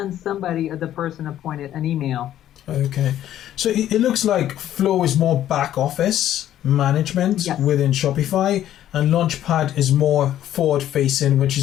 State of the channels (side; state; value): right; quieter; 11.9 dB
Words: somebody, the person appointed, an email. Okay. So it looks like Flow is more back office management within Shopify, and Launchpad is more forward facing, which